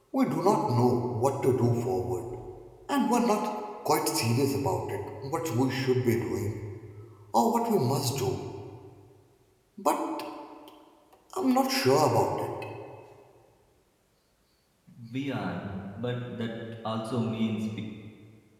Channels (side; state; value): both; identical; correlation 1.00